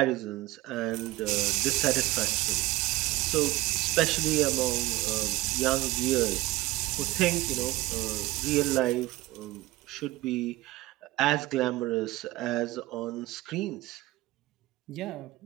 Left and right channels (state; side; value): quieter; left; 18.7 dB